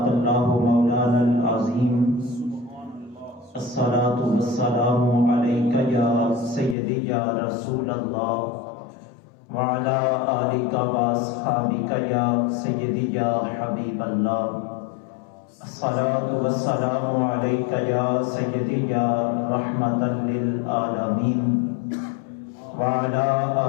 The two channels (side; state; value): right; drops out; at 6.8 s